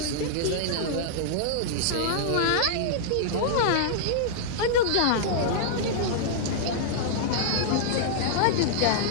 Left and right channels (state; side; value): different; both; correlation -0.02